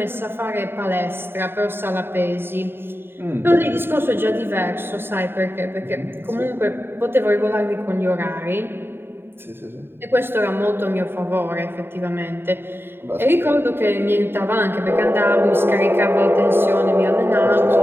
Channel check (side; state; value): left; late; 0.11 ms